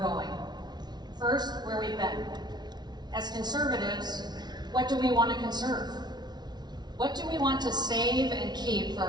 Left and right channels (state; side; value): late; left; 0.20 ms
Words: First, where we've been. As conservatives, what do we want to conserve? What do we want to save and keep for